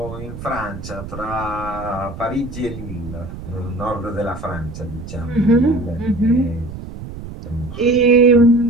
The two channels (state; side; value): noise; right; rumble, 11 dB below the sound